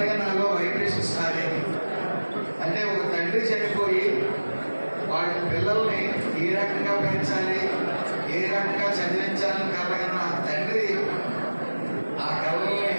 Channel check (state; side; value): inverted; both; correlation -1.00